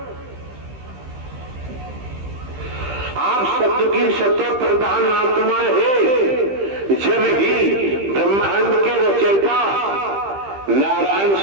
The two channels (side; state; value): left; late; 15 ms